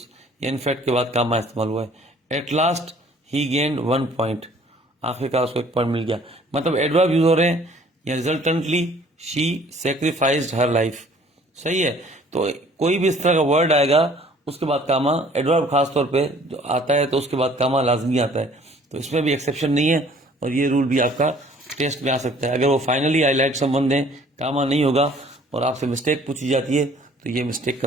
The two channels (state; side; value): normal; both; correlation 0.55